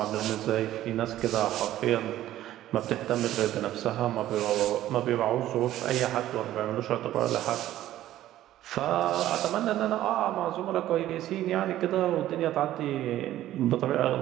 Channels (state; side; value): quieter; left; 13.6 dB